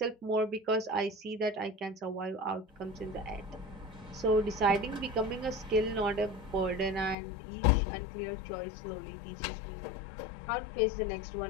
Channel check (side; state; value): right; drops out; at 7.2 s